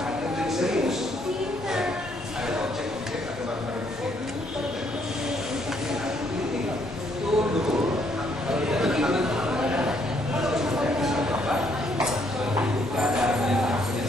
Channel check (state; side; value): normal; both; correlation 0.70